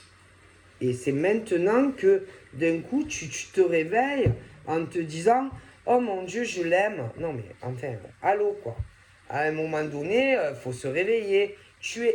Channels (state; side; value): identical; both; correlation 1.00